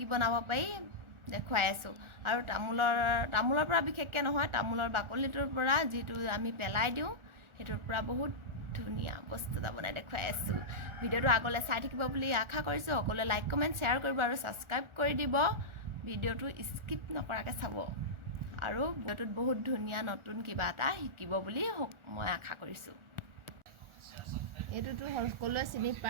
বনাব পাৰি দেখুৱাই আছোঁ। আৰু তামোলৰ পৰা বিশেষকৈ নহয়, তামোলৰ বাকলিটোৰ পৰা যিটো আমি পেলাই দিওঁ সেইটোৰ পৰা বহুত ধুনীয়া বস্তু এটা বনাই দেখুৱাই আছোঁ। ভিডিঅ'টো আগলৈ চাই থাকিব বুলি আশা কৰিছোঁ। সকলোৱে লাইক কমেণ্ট শ্বেয়াৰ কৰিব আৰু ছাবস্ক্ৰাইব কৰি দিব। ভিডিঅ'টো স্কিপ নকৰাকৈ চাব আৰু ভিডিঅ'টোত বহুত ধুনীয়া নতুন কিবা এটা শিকিব বুলি মই আশা কৰিছোঁ। এইটোতো সকলোৱে চিনি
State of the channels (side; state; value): left; late; 1.4 ms